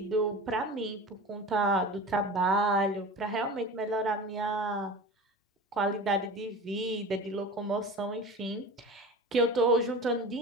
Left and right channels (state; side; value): normal; both; correlation 0.34